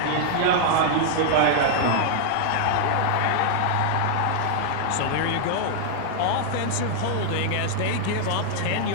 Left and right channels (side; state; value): both; different; correlation 0.00